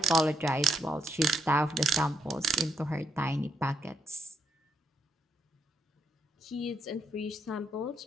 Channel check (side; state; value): both; normal; correlation 0.77